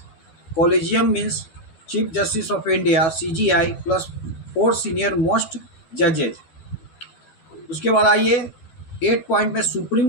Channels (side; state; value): right; late; 12 ms